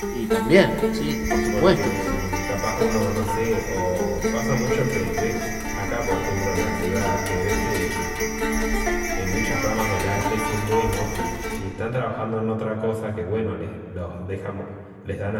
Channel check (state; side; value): identical; both; correlation 1.00